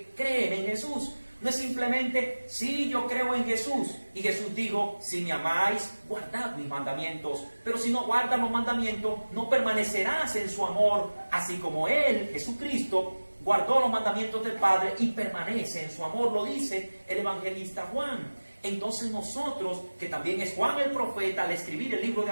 creen en Jesús. No es simplemente, sí, yo creo en Jesús. Y Jesús dijo, si me amáis, guardad mis mandamientos. Pero si no guardas los mandamientos, no permanecerás en su amor. Así como Él, Jesucristo, guardó los mandamientos del Padre y permanece en su amor. Lo dice el evangelista Juan. Entonces nosotros, que también es Juan el profeta, al escribir el libro de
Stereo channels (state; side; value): inverted; both; correlation -1.00